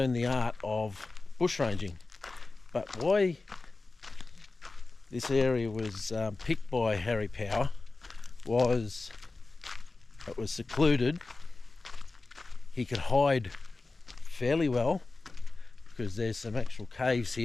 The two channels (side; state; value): right; quieter; 3.5 dB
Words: the art of bushranging. But why this area was picked by Harry Power was it was secluded. He could hide fairly well because there's some actual caves